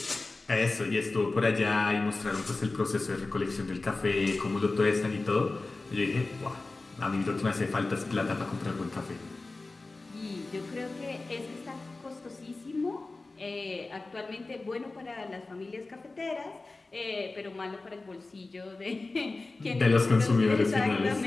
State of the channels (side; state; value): right; quieter; 3.4 dB